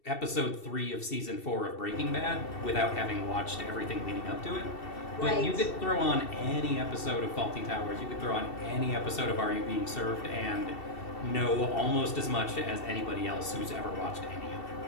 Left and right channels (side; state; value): right; late; 2.7 ms